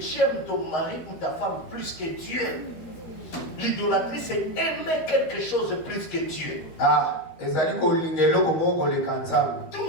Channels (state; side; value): late; right; 13 ms